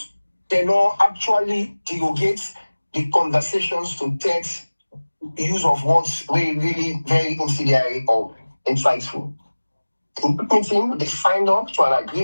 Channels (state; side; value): inverted; both; correlation -1.00